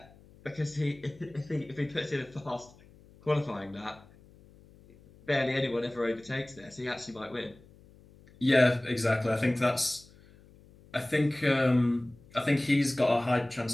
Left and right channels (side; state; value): left; noise; hum, 25 dB below the sound